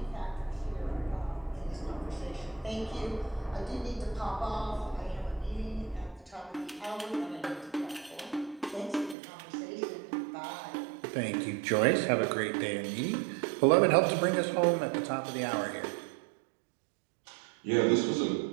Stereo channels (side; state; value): left; drops out; at 9.2 s